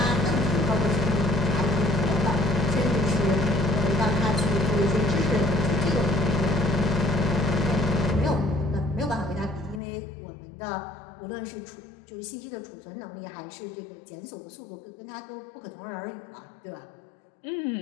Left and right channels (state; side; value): drops out; right; at 9.8 s